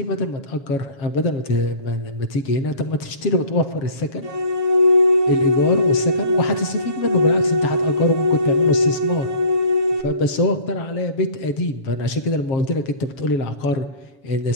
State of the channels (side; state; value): right; late; 7.3 ms